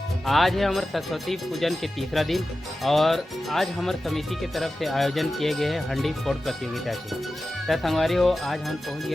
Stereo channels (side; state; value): both; normal; correlation 0.93